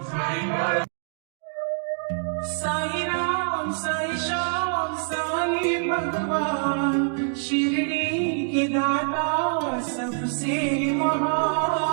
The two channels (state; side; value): silent; left; 62 dB below the other